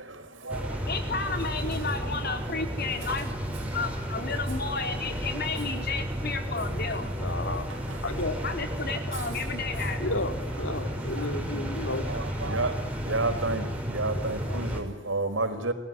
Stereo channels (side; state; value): both; normal; correlation 0.25